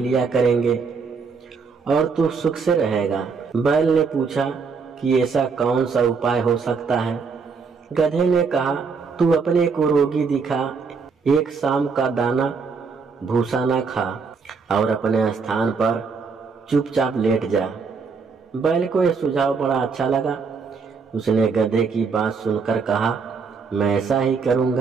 लिया करेंगे और तू सुख से रहेगा। बैल ने पूछा कि ऐसा कौन सा उपाय हो सकता है। गधे ने कहा, तू अपने को रोगी दिखा, एक शाम का दाना भूसा ना खा और अपने स्थान पर चुपचाप लेट जा। बैल को यह सुझाव बड़ा अच्छा लगा। उसने गधे की बात सुनकर कहा, मैं ऐसा ही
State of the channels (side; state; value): left; quieter; 5.1 dB